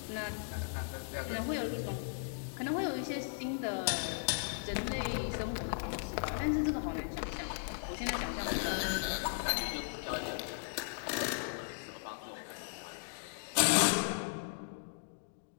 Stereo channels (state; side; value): silent; right; digital silence